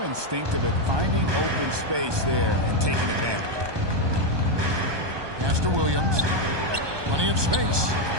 instinctive at finding open space there and taking advantage. Pass to Williams. Plenty of space.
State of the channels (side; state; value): left; late; 1.2 ms